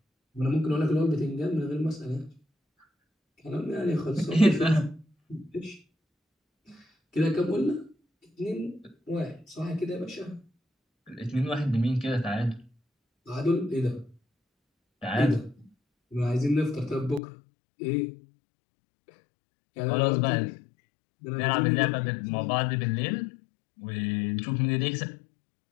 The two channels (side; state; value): right; drops out; at 17.2 s